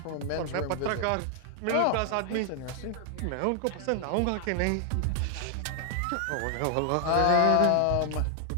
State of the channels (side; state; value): both; different; correlation 0.00